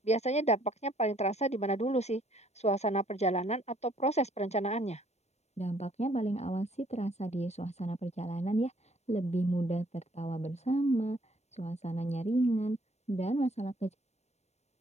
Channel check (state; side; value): late; right; 0.32 ms